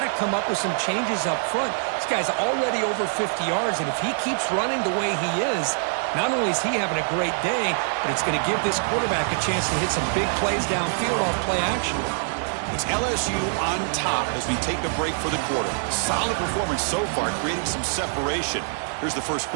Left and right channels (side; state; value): left; silent; digital silence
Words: to come up with some changes up front. This guy's already over 50 yards, and if he keeps running the way he is, not only is he having a great day, but it's going to give this quarterback a chance to hit some big plays downfield off play action. It's LSU on top as we take a break for the quarter. Solid performance so far, creating some separation. Here's the first